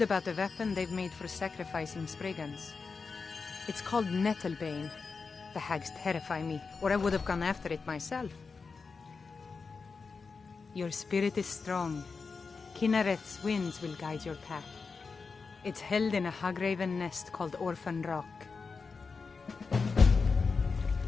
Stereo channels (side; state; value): right; quieter; 4.8 dB